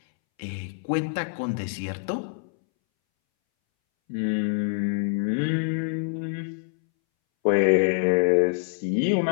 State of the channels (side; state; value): right; silent; 61 dB below the other